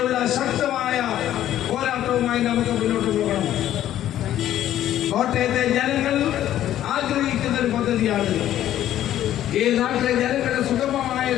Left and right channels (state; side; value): quieter; right; 12.2 dB